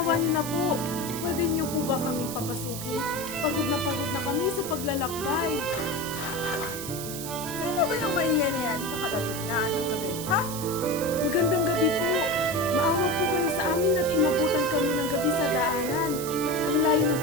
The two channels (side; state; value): right; noise; hiss, 8 dB below the sound